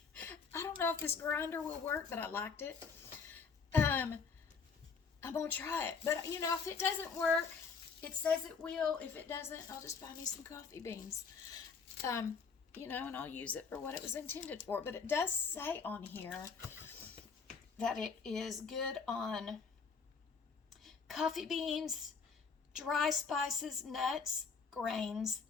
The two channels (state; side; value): quieter; right; 5.4 dB